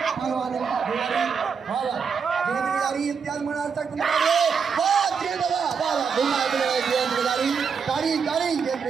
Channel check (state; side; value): quieter; left; 6.2 dB